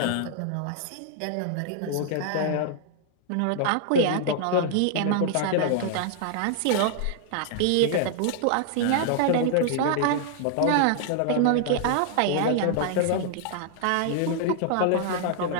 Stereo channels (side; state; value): both; different; correlation -0.01